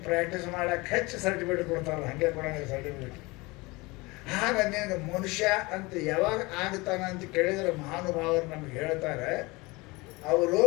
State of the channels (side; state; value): right; quieter; 24.0 dB